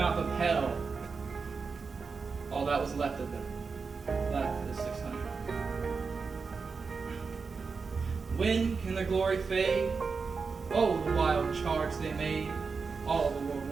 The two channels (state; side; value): quieter; left; 4.9 dB